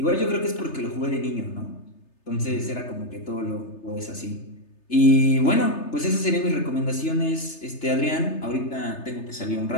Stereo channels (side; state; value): right; late; 3.3 ms